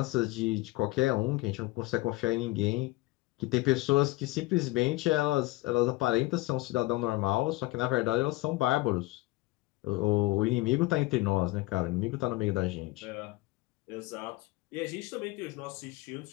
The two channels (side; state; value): right; quieter; 19.9 dB